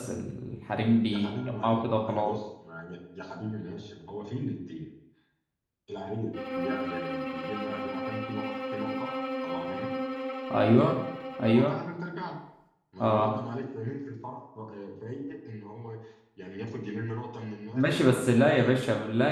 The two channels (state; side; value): identical; both; correlation 1.00